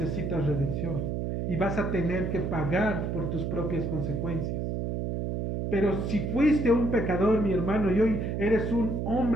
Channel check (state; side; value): noise; right; hum, 2 dB below the sound